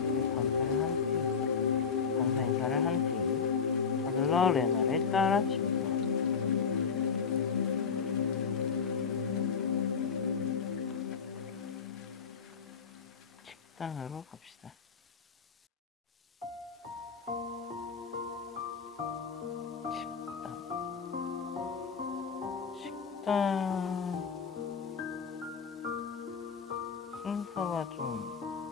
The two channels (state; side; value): quieter; right; 6.1 dB